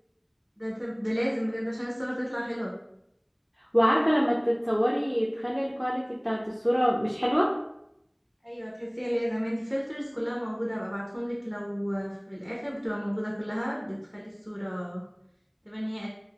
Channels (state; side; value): identical; both; correlation 1.00